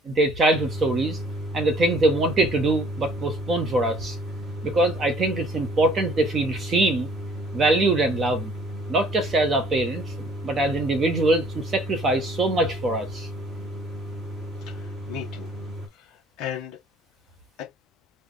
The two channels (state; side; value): normal; both; correlation 0.57